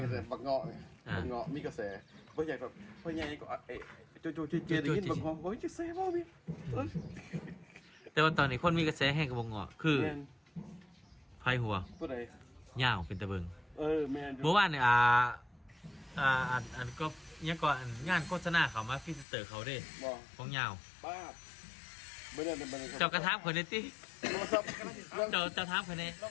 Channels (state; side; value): drops out; right; at 19.2 s